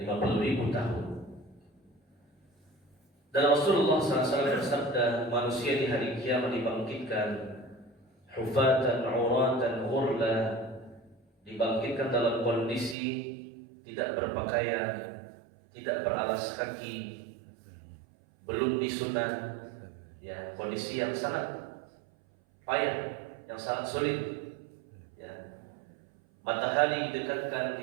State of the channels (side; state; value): left; drops out; at 13.0 s